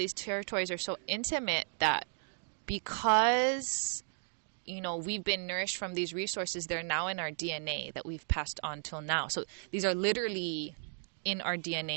these territories are so intimate that because, you know, we've been nourished from these resources, they're now in our DNA that we've passed on till now. So these are literally in our DNA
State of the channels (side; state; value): left; silent; digital silence